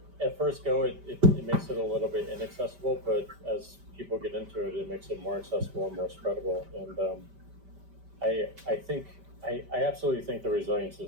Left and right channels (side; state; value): left; late; 5.1 ms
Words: at first go, it makes it a little bit inaccessible, but as people get into it, it makes it more accessible and more spreadable. And I think I absolutely think the resilience